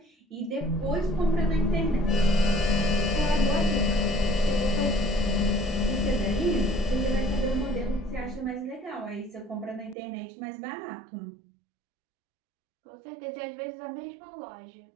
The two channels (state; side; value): drops out; left; at 10.0 s